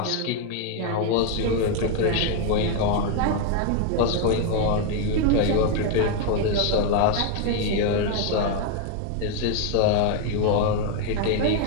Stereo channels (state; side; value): different; both; correlation 0.01